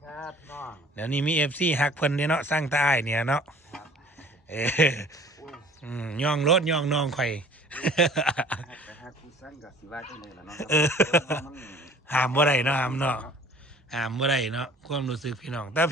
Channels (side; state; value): both; normal; correlation 0.50